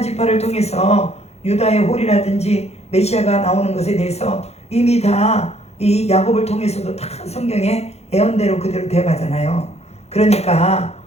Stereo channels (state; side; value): late; right; 0.31 ms